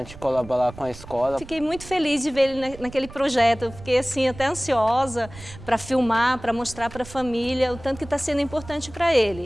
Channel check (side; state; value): right; noise; rumble, 17 dB below the sound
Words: colaborar com a escola. Fiquei muito feliz de ver ele naquele projeto, eu fiquei assim até ansiosa para filmar, para mostrar para a família o tanto que está sendo importante para